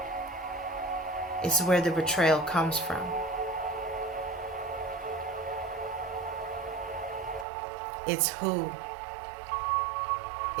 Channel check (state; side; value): drops out; left; at 7.5 s